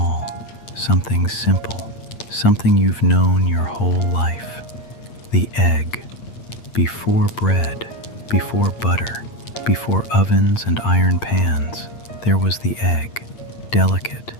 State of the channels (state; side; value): late; right; 8.7 ms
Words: something simple, something you've known your whole life. The egg. Before bread, before butter, before ovens and iron pans, there was the egg, delicate,